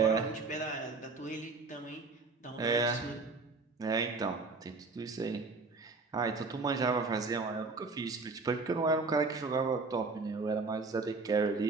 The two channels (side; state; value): left; quieter; 3.9 dB